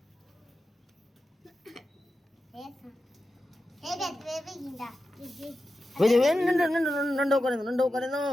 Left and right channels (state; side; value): normal; both; correlation 0.91